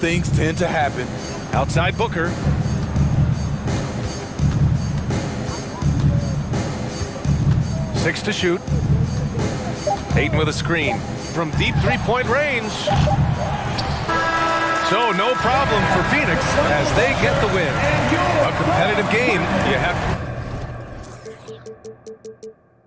tend to happen. Outside Booker. Six to shoot. Ayton with a screen from deep three-point range. So no problem for Phoenix as they get the win. A competitive game. You have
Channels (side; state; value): both; identical; correlation 1.00